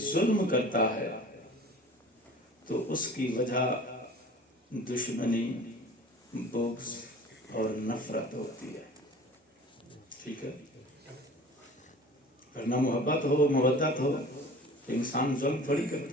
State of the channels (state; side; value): normal; both; correlation 0.43